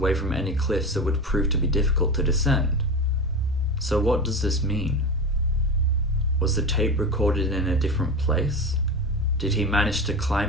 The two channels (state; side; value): normal; both; correlation 0.24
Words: from any cliffs that would prove to be difficult to descend. So what does this mean? Was the tape recorded in a different place? Did he manage to